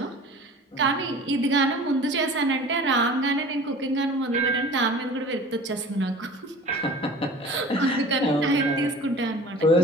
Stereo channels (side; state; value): both; normal; correlation 0.42